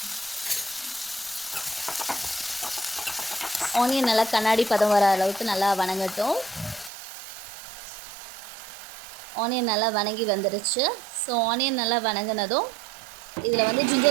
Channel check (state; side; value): drops out; left; at 6.9 s